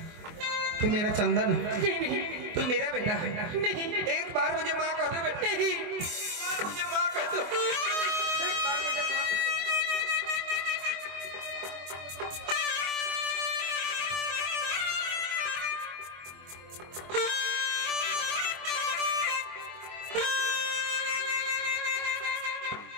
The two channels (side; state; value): left; late; 24 ms